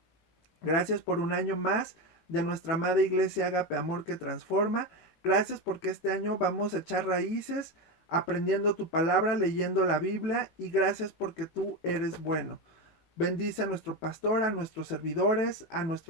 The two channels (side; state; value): right; late; 18 ms